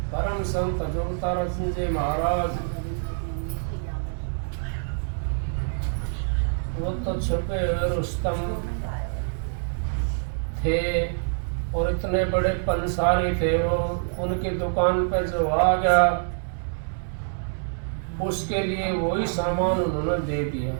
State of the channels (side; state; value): left; silent; digital silence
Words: परम संत जोगतारा सिंह जी महाराज वो तो छुपे हुए रुस्तम थे और इतने बड़े पंसारी थे वो। उनकी दुकान पर जो आ गया उसके लिए वही सामान उन्होंने दे दिया,